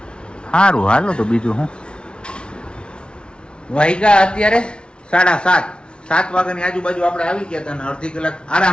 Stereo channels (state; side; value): late; right; 0.056 ms